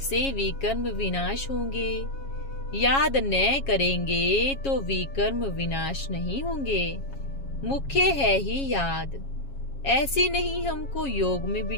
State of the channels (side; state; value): right; late; 7.3 ms